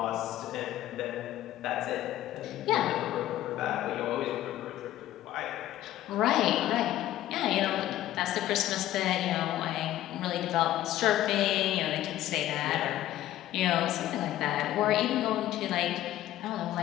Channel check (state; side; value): quieter; right; 13.8 dB